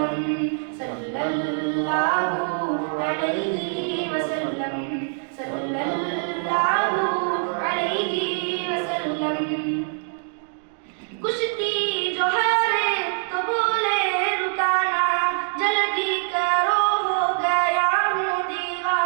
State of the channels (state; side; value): silent; left; 63 dB below the other